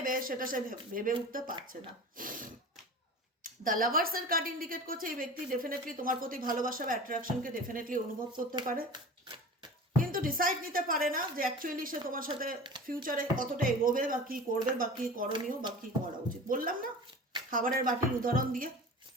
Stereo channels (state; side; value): normal; both; correlation 0.36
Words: সেটা সে ভেবে উঠতে পারছে না। দ্য লাভার্সের কার্ড ইন্ডিকেট করছে এই ব্যক্তি ডেফিনেটলি তোমার প্রতি ভালোবাসা বা অ্যাট্রাকশনকে ডেফিনেটলি অনুভব করতে পারে, কিন্তু ডিসাইড নিতে পারে না যে অ্যাকচুয়ালি সে তোমার সাথে ফিউচারে কতটা এগোবে বা কী করবে বা কী করণীয় বা কী করা উচিত। বললাম না খাবারের বাটির উদাহরণ দিয়ে,